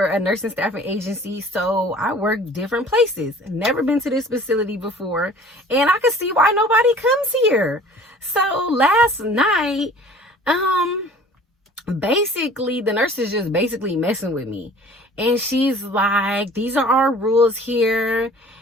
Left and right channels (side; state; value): both; normal; correlation 0.48